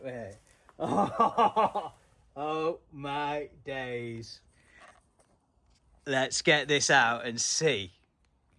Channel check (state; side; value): identical; both; correlation 1.00